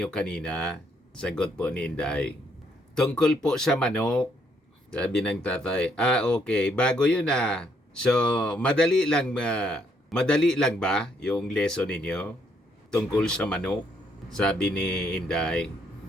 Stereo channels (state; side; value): normal; both; correlation 0.71